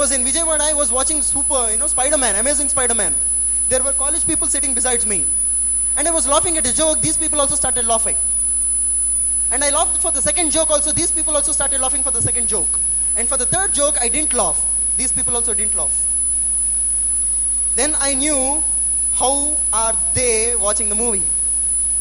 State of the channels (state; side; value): identical; both; correlation 1.00